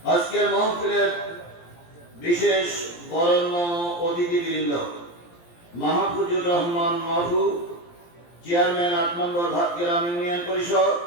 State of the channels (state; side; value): late; right; 17 ms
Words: আজকের মাহফিলের বিশেষ বরেণ্য অতিথিবৃন্দ মাহফুজুর রহমান মাহফু, চেয়ারম্যান 8 নম্বর ভাতগ্রাম ইউনিয়ন পরিষদ,